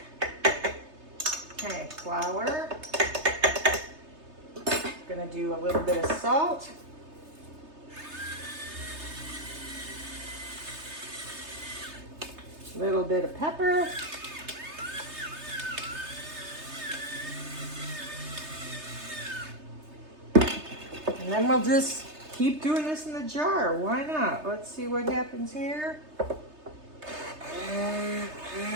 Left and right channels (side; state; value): left; late; 3.3 ms